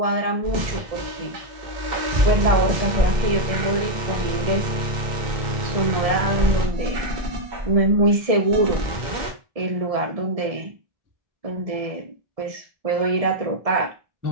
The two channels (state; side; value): late; left; 1.7 ms